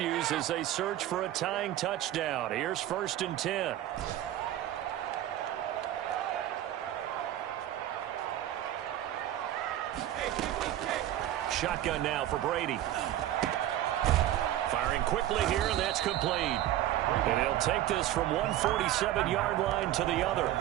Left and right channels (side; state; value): left; quieter; 13.0 dB